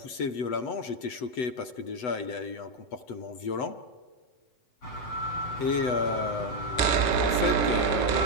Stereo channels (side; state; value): right; late; 7.9 ms